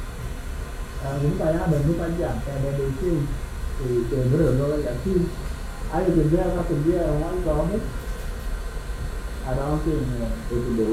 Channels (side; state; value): both; identical; correlation 1.00